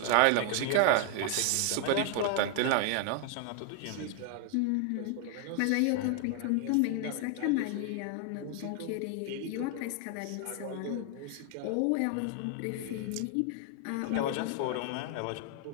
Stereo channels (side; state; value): both; different; correlation 0.00